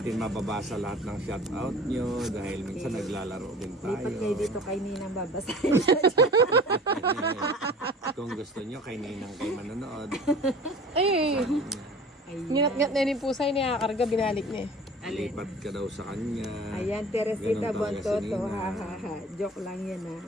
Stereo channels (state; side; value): normal; both; correlation 0.43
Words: mababasa lahat ng shout out nyo dahil minsan naglalaro din tayo. Lipat kayo dito kay Ninang babasahin. Kung gusto nyo, kay Ninang kayo manonood. Ay, Ayan. nginat-ngat na yung pusay niya. Karga, binalik niya. Lipat ka daw sa kanya. Ayan, Teresita Ganun talaga si Bontoto. Nina. Ha, ha, ha. Joke lang yan ha.